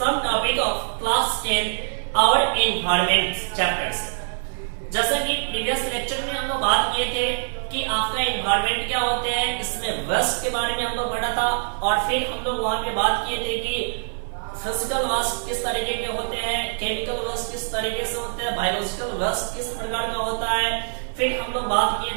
topic of class 10 our environment chapters. जैसा कि previous lecture में हम लोग बात किए थे कि आपका एनवायरमेंट क्या होते हैं, इसमें वेस्ट के बारे में हम लोग पढ़ा था और फिर हम लोग वहां पे बात किए थे कि फिजिकल वेस्ट किस तरीके के होते हैं, केमिकल वेस्ट किस तरीके से होते हैं, बायोलॉजिकल वेस्ट किस प्रकार का होता है। फिर हम लोग बात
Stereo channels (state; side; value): silent; left; digital silence